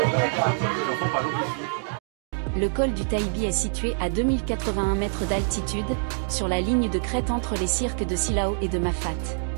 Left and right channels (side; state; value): left; silent; digital silence